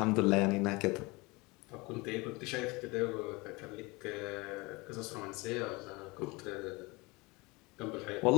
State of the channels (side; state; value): right; quieter; 24.9 dB